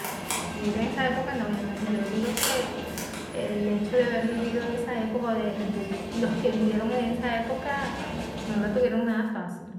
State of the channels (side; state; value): both; identical; correlation 1.00